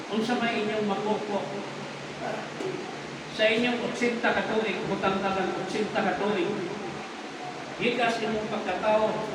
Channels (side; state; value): both; identical; correlation 1.00